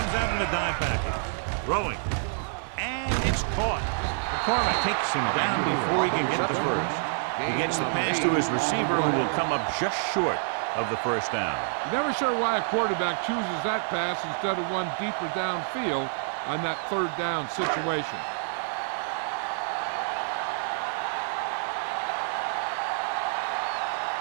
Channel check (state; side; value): silent; left; digital silence